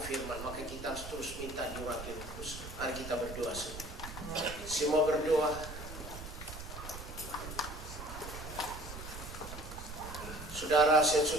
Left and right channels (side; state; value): right; noise; rumble, 10 dB below the sound